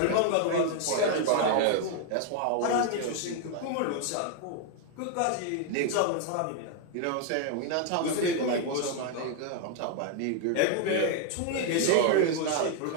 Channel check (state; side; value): different; both; correlation 0.00